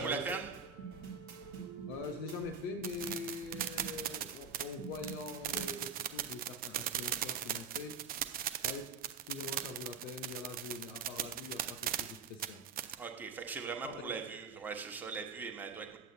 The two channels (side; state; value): left; quieter; 4.8 dB